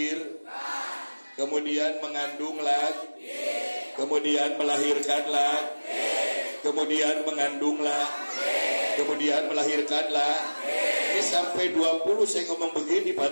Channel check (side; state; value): both; inverted; correlation -1.00